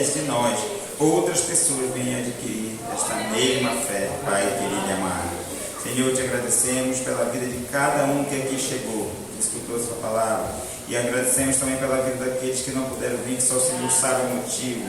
de nós outras pessoas venham adquirir esta mesma fé, Pai querido e amado. Senhor, te agradecemos pela vida de cada um que aqui chegou, que escutou sua palavra, E agradecemos também pela vida daqueles que não puderam vir, que só o Senhor sabe o motivo.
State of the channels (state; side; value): identical; both; correlation 1.00